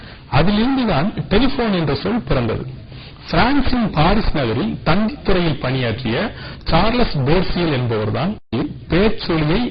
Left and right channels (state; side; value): identical; both; correlation 1.00